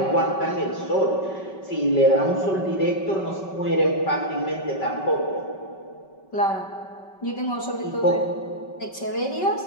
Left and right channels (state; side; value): late; right; 5.2 ms